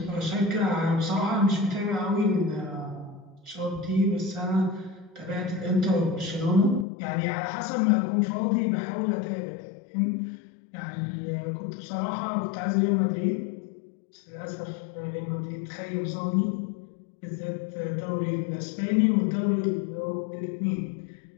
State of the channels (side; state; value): right; drops out; at 6.9 s